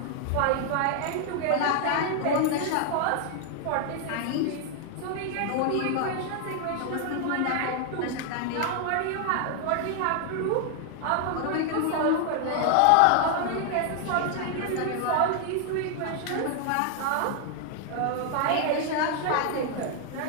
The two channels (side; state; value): both; different; correlation 0.00